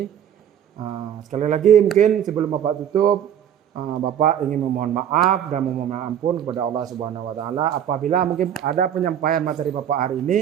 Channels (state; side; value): quieter; left; 9.6 dB